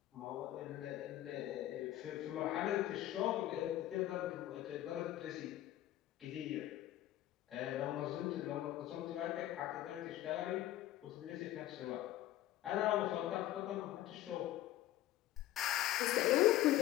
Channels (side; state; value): right; quieter; 14.1 dB